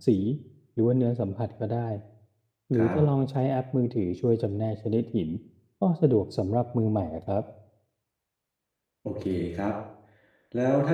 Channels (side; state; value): both; identical; correlation 1.00